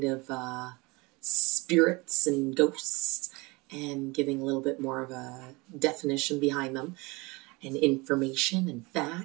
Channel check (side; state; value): left; quieter; 25.3 dB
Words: of spirits and ghosts, and giving a little bit more of a definition behind them and information and